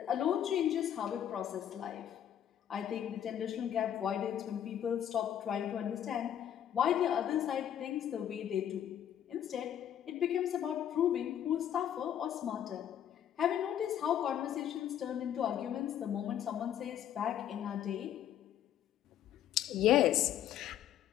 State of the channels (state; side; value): quieter; right; 10.2 dB